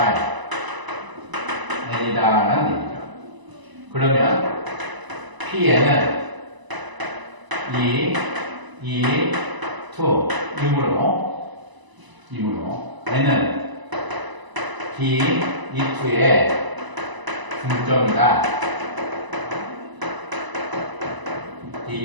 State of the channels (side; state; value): left; late; 1.0 ms